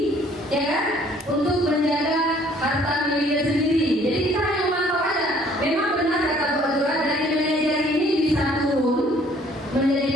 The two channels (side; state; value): both; normal; correlation 0.59